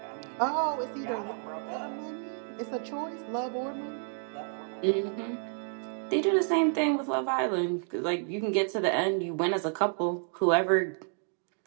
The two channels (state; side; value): silent; left; 57 dB below the other